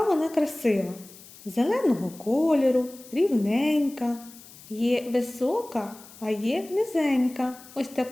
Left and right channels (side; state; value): left; noise; hiss, 20 dB below the sound